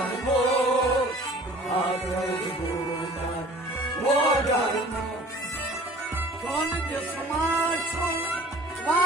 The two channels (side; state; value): both; normal; correlation 0.48